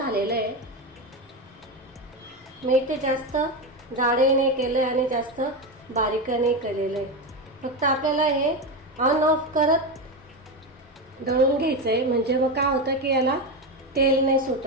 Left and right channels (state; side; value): normal; both; correlation 0.15